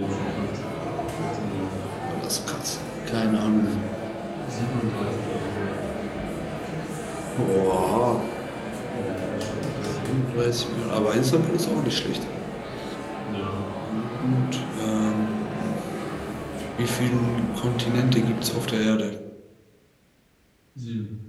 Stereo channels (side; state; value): both; identical; correlation 1.00